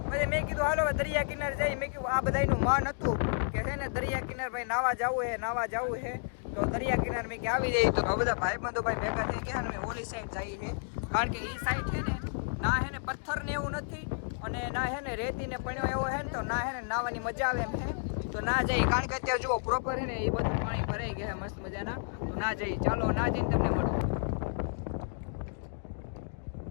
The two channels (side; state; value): right; silent; digital silence